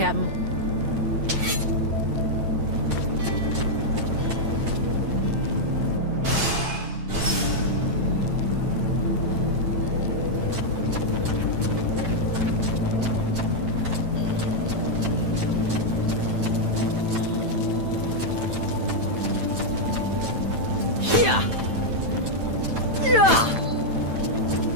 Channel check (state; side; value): late; left; 8.9 ms